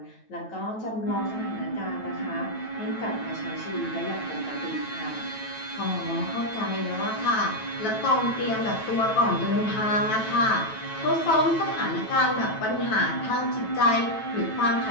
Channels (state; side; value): late; right; 9.2 ms